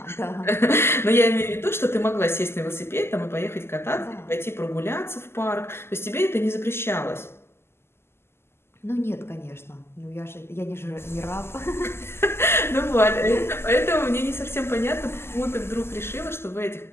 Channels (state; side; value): late; right; 0.12 ms